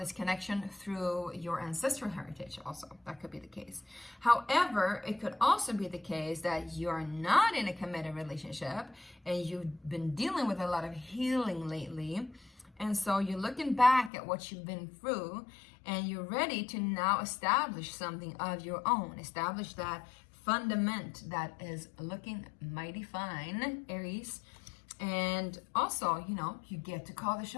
connection through your ancestral heritage also. That could be the case. However, it could also be the case that you're not in a committed relationship and you've been dealing with a lot of healing lately. And so you're looking back at what you've been through, and you're ready to now establish something of your own. Establish that fundament that is looking mighty fine, Aries. And also, you know, you get to call the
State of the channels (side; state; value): right; drops out; at 14.1 s